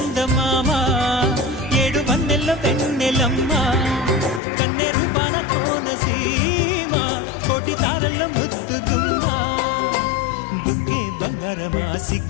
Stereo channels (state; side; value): drops out; right; at 4.4 s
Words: ఏడు వన్నెల్లో వెన్నెలమ్మా కన్నె రూపాన కోనసీమ కోటి తారల్లో ముద్దుగుమ్మా బుగ్గే బంగారమా